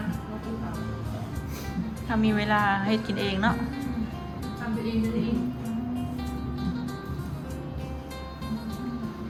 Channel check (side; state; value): both; identical; correlation 1.00